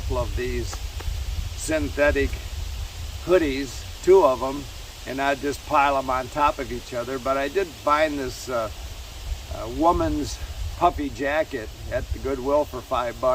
of these synthetic hoodies, 2 of them, and I'd just pile them on top of each other. But I did find this woman's puffy jacket at the Goodwill for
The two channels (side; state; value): both; identical; correlation 1.00